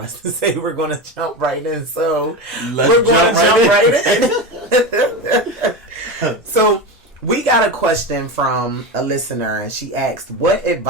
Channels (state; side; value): normal; both; correlation 0.21